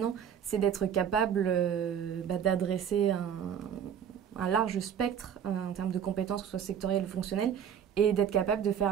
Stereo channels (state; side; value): quieter; left; 8.4 dB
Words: c'est d'être capable d'adresser un large spectre en termes de compétences, que ce soit sectorielles ou fonctionnelles, et d'être capable de faire